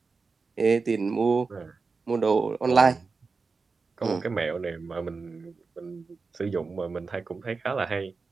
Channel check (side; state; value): left; quieter; 4.4 dB